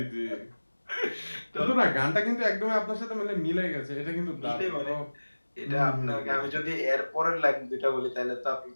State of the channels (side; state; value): both; inverted; correlation -1.00